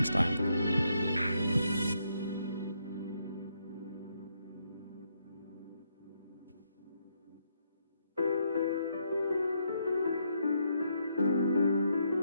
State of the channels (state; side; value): inverted; both; correlation -0.77